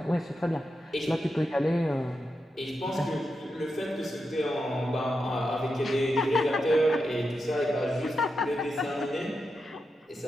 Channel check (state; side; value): normal; both; correlation 0.87